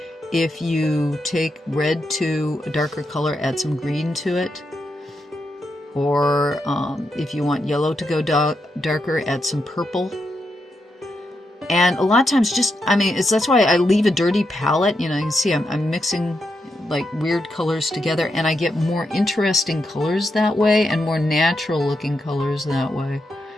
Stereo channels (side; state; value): both; normal; correlation 0.84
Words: if you take red to a darker color, add some green to it. Or if you want yellow to go darker, add some purple. And a lot of times that's why I leave a dirty palette. You can see I'm mixing like weird colors together, and I get more interesting colors that way and more natural looking colors that way.